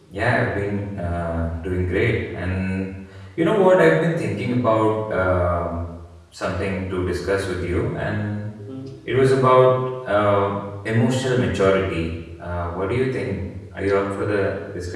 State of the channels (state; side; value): identical; both; correlation 1.00